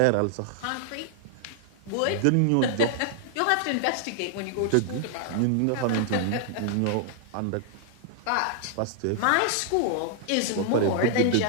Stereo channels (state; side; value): different; both; correlation 0.00